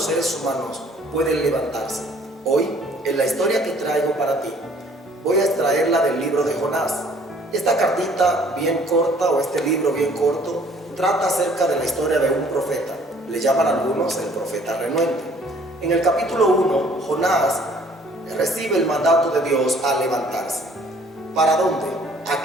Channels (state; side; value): normal; both; correlation 0.57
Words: seres humanos pueden levantarse. Hoy, en la historia que traigo para ti, voy a extraerla del libro de Jonás. Esta cartita bien corta, o este libro bien corto, trata acerca de la historia de un profeta. Le llaman algunos el profeta renuente. En el capítulo 1, Jonás recibe el mandato de Dios a levantarse. ¿Para dónde? ¿A